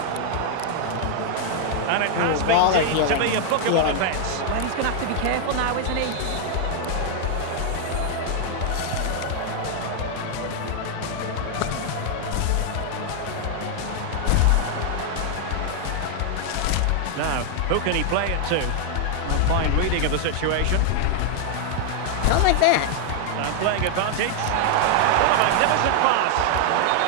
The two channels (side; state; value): both; different; correlation 0.00